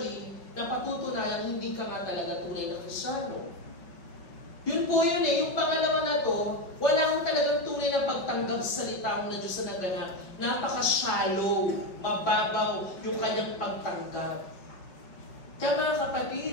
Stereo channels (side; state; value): right; late; 5.1 ms